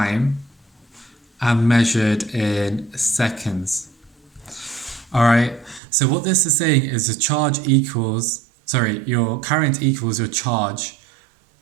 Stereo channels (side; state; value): left; drops out; at 5.8 s